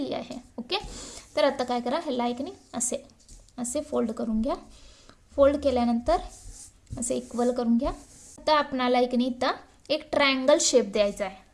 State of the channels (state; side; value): identical; both; correlation 1.00